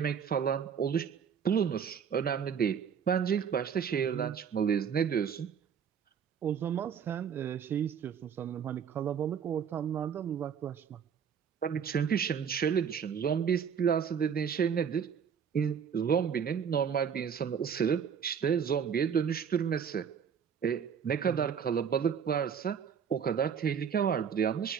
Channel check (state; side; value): quieter; left; 7.4 dB